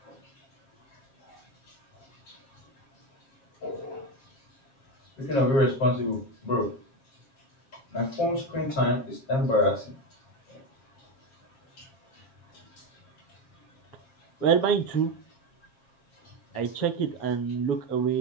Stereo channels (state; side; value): late; right; 7.5 ms